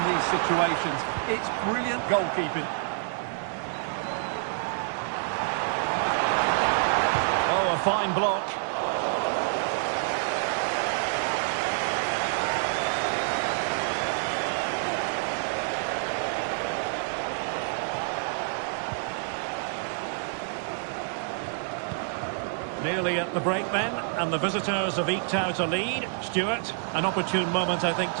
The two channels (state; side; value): silent; left; digital silence